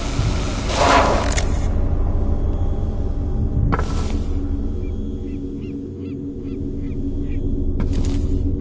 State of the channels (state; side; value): identical; both; correlation 1.00